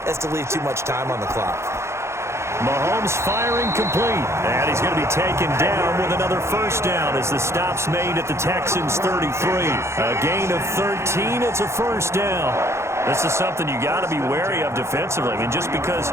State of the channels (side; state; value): left; late; 0.13 ms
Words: as to leave too much time on the clock. Mahomes firing complete, and he's going to be taken down with another 1st down as the stop's made at the Texans' 33. A gain of 13, it's a 1st down. This is something you got to be wary of defensively. I mean, just because